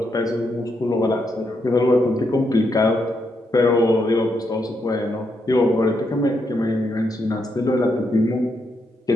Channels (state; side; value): normal; both; correlation 0.80